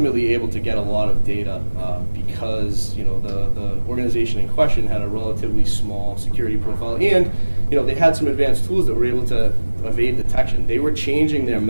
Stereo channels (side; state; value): both; inverted; correlation -1.00